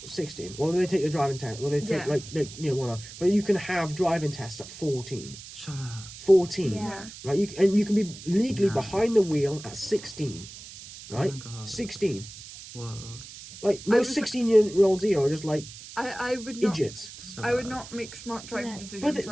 16. Well, they take the driving test. Well, they take one. But you can have driving tests at 14. shut up. 14. Yeah. Yeah. Right. You can be legally No. behind the wheel at 16. Right. Oh my God. 16. Whoa. Like I most was- 16-year-olds here are just like I would not. idiots. So I would bad. not make smart driving No. decisions But they,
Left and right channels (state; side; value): noise; right; hiss, 15 dB below the sound